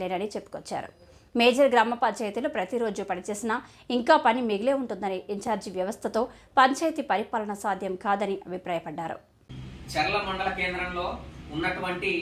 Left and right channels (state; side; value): identical; both; correlation 1.00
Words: చెప్పుకొచ్చారు. మేజర్ గ్రామ పంచాయతీలో ప్రతిరోజు పనిచేసినా ఇంకా పని మిగిలే ఉంటుందని, ఇన్ఛార్జి వ్యవస్థతో పంచాయతీ పరిపాలన సాధ్యం కాదని అభిప్రాయపడ్డారు. చెర్ల మండల కేంద్రంలో ఉన్నటువంటి